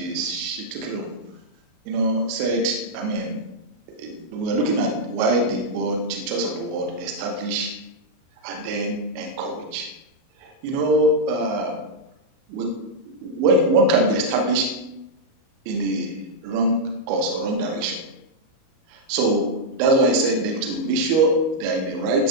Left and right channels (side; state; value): left; late; 37 ms